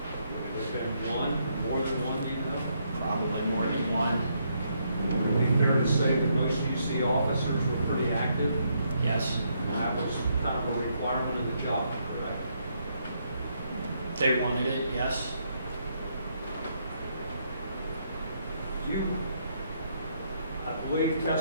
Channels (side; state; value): both; inverted; correlation -0.75